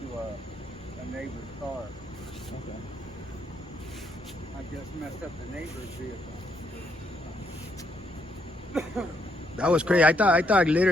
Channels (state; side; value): normal; both; correlation 0.74